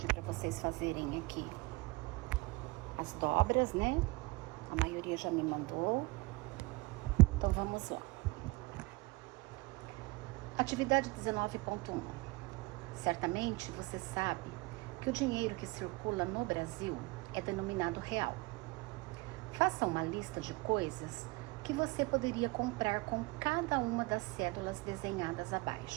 para vocês fazerem aqui as dobras, né? A maioria já me mandou. Então, vamos lá. Atividade 19.1. Certamente você sabe que o dinheiro que circula no Brasil é denominado real. Faça uma lista de coisas que você poderia comprar com cada uma das cédulas desenhadas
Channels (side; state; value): left; quieter; 23.1 dB